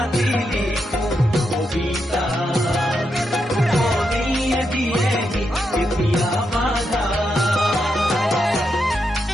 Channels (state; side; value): normal; both; correlation 0.83